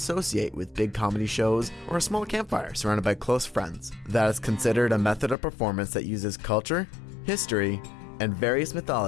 with big comedy shows or a small campfire surrounded by close friends? That is considered a method of performance that uses culture, history, and various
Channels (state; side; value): drops out; right; at 5.4 s